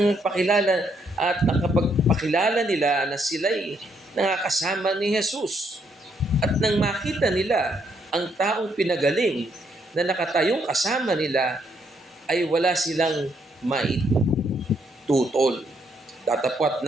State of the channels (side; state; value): both; normal; correlation 0.73